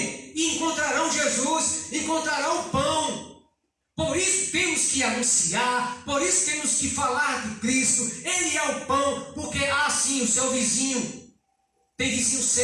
e encontrarão Jesus, encontrarão pão. Por isso temos que anunciar, por isso temos que falar de Cristo. Ele é o pão, porque sim, o seu vizinho, tem vizinho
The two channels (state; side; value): identical; both; correlation 1.00